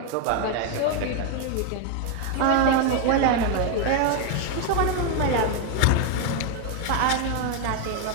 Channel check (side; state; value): both; different; correlation 0.01